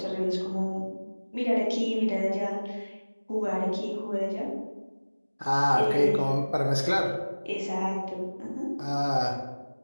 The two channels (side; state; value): both; inverted; correlation -1.00